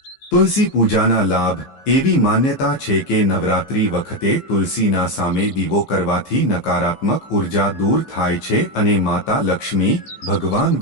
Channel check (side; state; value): right; late; 15 ms